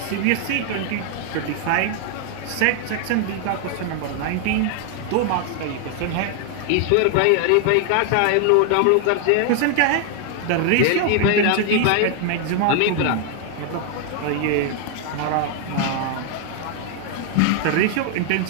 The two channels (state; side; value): different; both; correlation 0.00